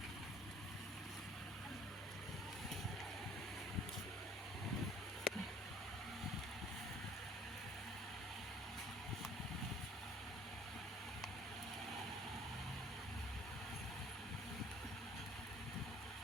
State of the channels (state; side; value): normal; both; correlation 0.54